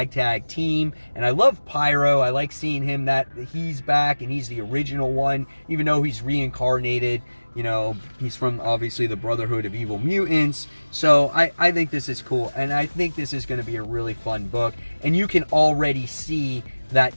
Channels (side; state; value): both; inverted; correlation -1.00